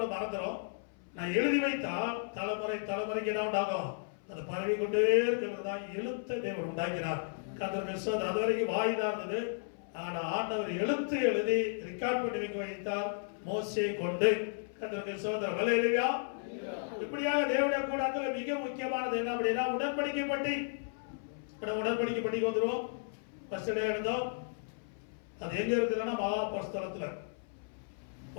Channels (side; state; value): right; silent; 55 dB below the other